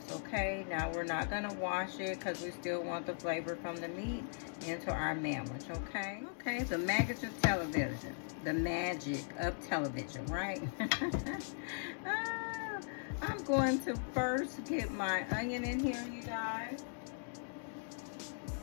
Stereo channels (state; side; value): silent; right; digital silence